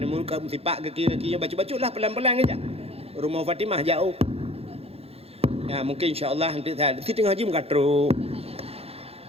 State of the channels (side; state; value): left; late; 0.29 ms